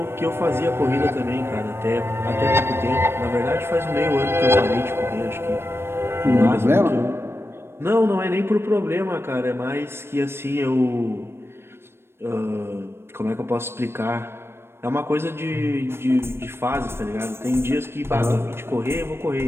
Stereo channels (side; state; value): left; late; 0.12 ms